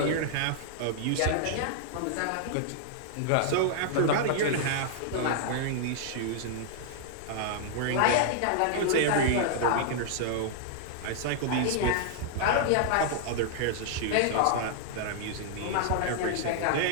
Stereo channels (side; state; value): both; different; correlation -0.01